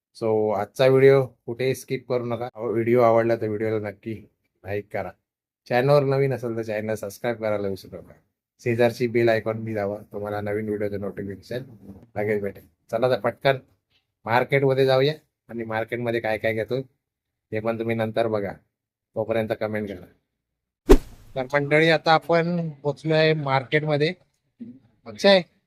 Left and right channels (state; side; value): identical; both; correlation 1.00